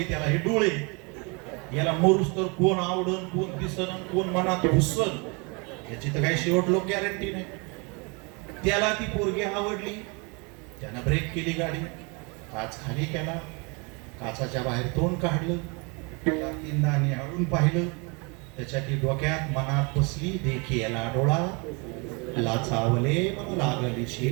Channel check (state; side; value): quieter; left; 30.9 dB